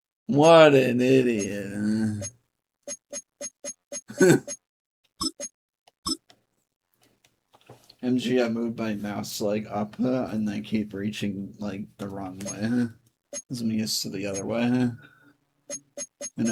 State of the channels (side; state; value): both; identical; correlation 1.00